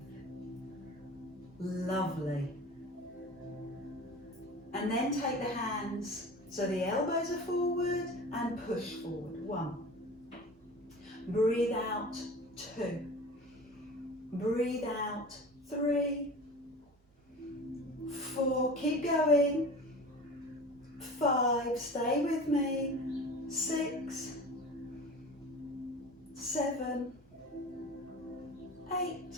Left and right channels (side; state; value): both; normal; correlation 0.37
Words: Lovely. And then take the hands so the elbows are forward and push forward. 1. Breathe out. 2. Breathe out. 3. 4. Keep going. 5. Stay with me. 6. 7. 8.